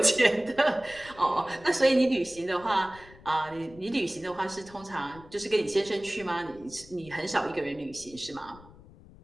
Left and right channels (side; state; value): left; noise; rumble, 21 dB below the sound